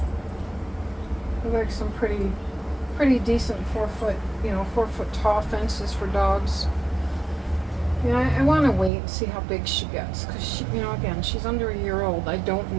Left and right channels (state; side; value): drops out; left; at 8.9 s